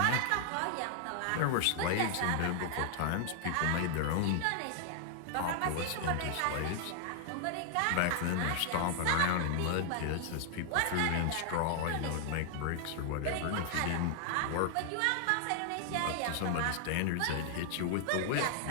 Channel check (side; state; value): both; different; correlation -0.01